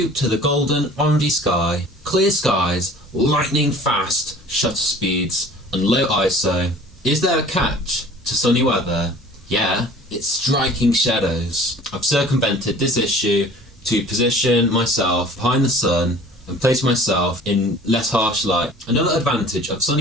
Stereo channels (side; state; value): both; normal; correlation 0.47